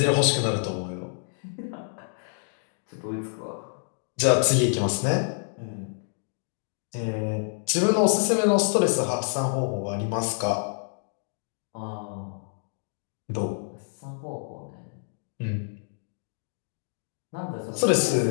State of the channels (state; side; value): silent; right; digital silence